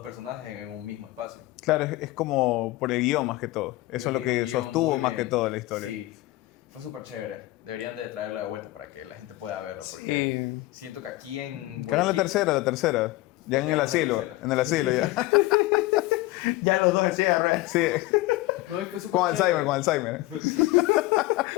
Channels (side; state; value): right; quieter; 18.7 dB